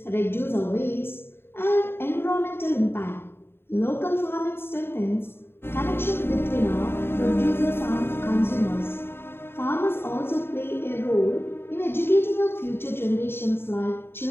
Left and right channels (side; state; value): right; late; 0.11 ms